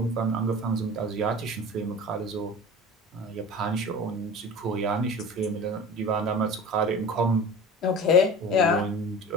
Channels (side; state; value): both; normal; correlation 0.37